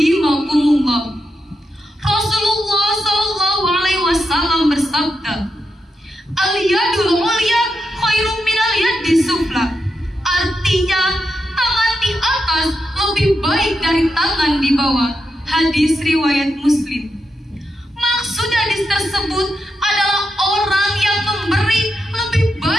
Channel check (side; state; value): both; normal; correlation 0.85